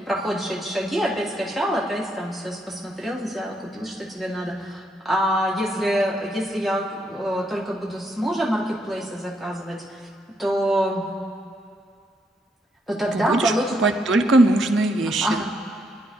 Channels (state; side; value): normal; both; correlation 0.76